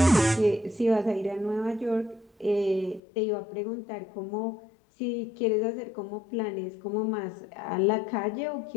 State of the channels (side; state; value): right; drops out; at 3.0 s